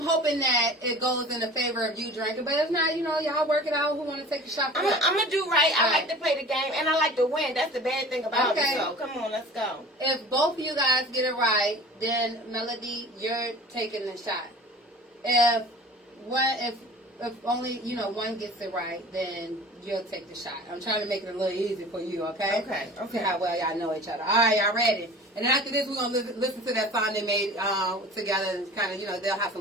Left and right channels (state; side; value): normal; both; correlation 0.41